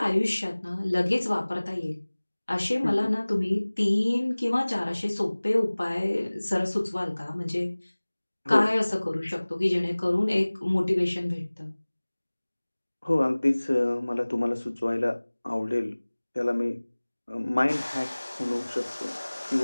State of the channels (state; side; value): inverted; both; correlation -1.00